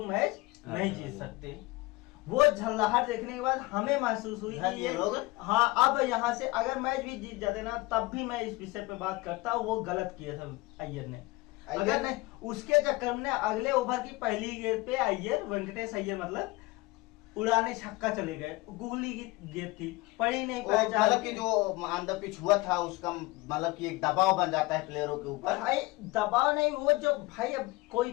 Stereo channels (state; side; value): quieter; right; 22.0 dB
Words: मैच नहीं जीत सकते। वो झल्लाहट देखने के बाद हमें महसूस हुई कि ये लोग, हाँ, अब यहाँ से अगर मैच भी जीत जाते ना, तब भी मैं इस विषय पे बात करता, वो गलत किया था अय्यर ने। अगर नहीं, उसके चक्कर में अगले ओवर की पहली गेंद पे अय्यर, वेंकटेश अय्यर मतलब उड़ाने छक्का चले गए। गुगली की गेंद थी, पड़ी नहीं पाया। मतलब कि जो ऑन द पिच हुआ था उसका मतलब कि एक दबाव बन जाता है प्लेयरों के ऊपर। भाई दबाव नहीं, वो जो भाई अब कोई